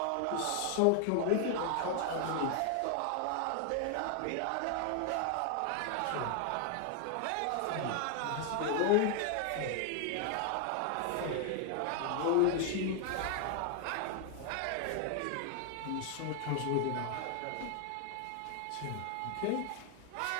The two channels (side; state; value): both; different; correlation 0.00